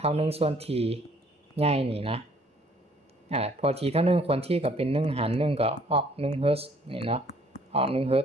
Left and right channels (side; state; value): both; normal; correlation 0.61